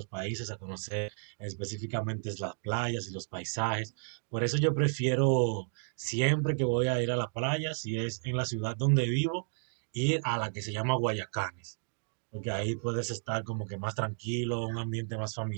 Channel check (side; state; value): left; silent; digital silence